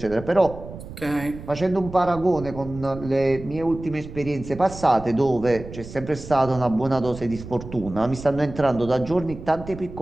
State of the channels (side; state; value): right; noise; rumble, 13 dB below the sound